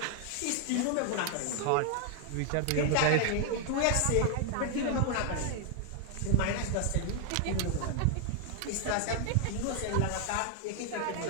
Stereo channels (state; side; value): different; both; correlation 0.00